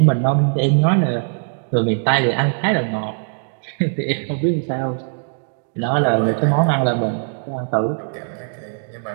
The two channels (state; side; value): silent; left; digital silence